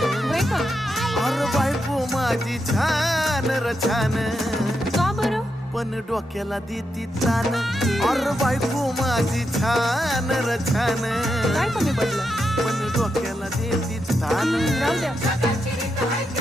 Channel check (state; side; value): normal; both; correlation 0.84